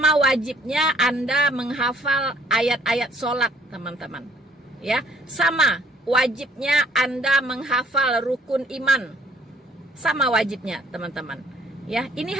wajibnya Anda menghafal ayat-ayat sholat teman-teman. Ya, sama wajibnya Anda menghafal rukun iman. Sama wajibnya teman-teman. Ya, ini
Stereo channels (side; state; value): both; normal; correlation 0.61